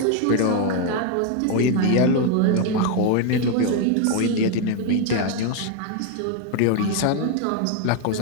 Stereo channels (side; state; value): both; different; correlation 0.01